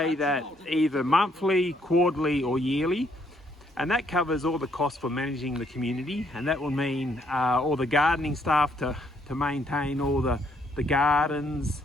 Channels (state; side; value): normal; both; correlation 0.70